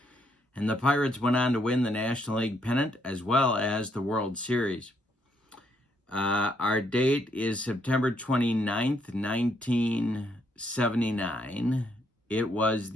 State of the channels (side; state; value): both; normal; correlation 0.73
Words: And the Pirates went on to win the National League pennant as well as the World Series. Our date is September 29th, 1979. It was